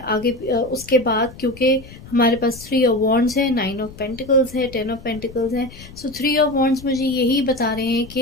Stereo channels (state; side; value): noise; left; rumble, 18 dB below the sound